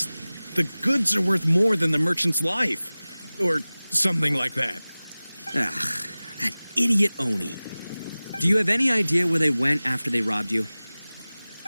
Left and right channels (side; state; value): both; inverted; correlation -0.98